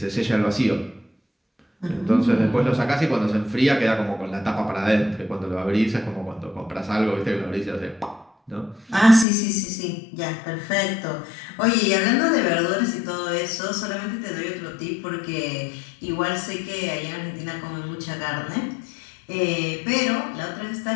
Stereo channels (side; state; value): right; drops out; at 9.2 s